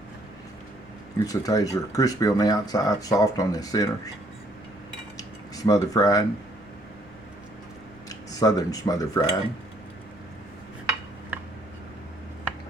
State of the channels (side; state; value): right; noise; rumble, 27 dB below the sound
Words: These potatoes are crispy on the outside, soft on the centers. Smothered fried. Southern smothered fried.